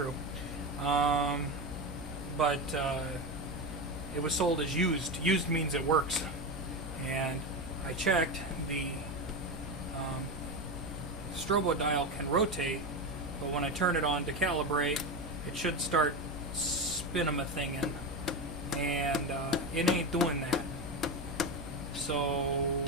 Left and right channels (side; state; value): both; normal; correlation 0.18